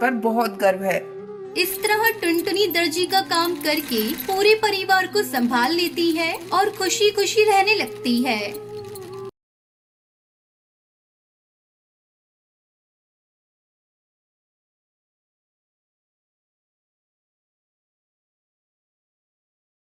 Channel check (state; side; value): identical; both; correlation 1.00